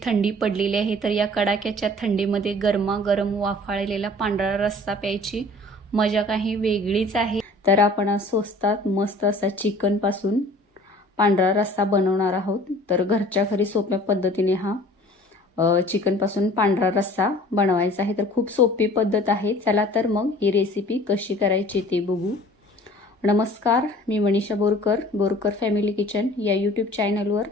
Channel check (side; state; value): both; normal; correlation 0.48